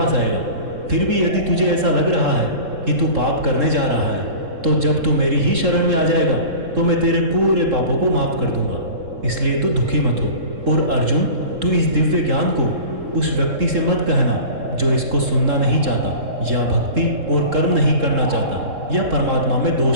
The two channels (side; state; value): left; late; 3.7 ms